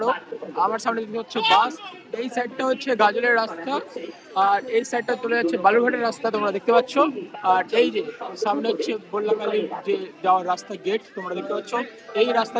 আমার সামনে দিকে হচ্ছে বাস, এই সাইডটা হচ্ছে গাজলের রাস্তা, আর এই সাইডটা চলে যাচ্ছে বালুরঘাটের রাস্তা, তোমরা দেখতে পাচ্ছ। আর এই যে সামনে হচ্ছে বল্লাকালীর যে যাওয়ার রাস্তা গেট, তোমরা দেখতে পাচ্ছ। এই রাস্তা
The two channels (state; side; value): identical; both; correlation 1.00